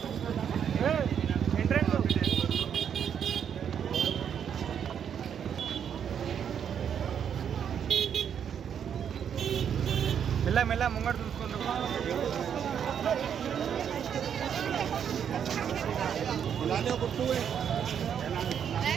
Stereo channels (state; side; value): quieter; left; 8.3 dB